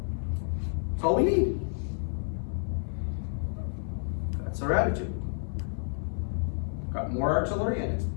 That's all we need. That's our attitude. Got more artillery and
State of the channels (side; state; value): right; silent; digital silence